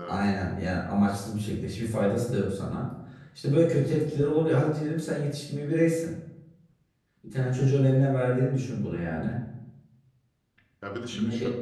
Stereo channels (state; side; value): identical; both; correlation 1.00